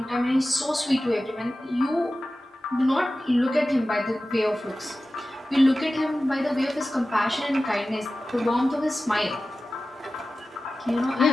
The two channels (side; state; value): both; normal; correlation 0.95